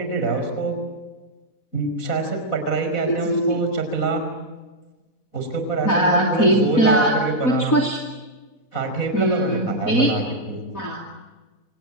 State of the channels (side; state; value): right; late; 4.1 ms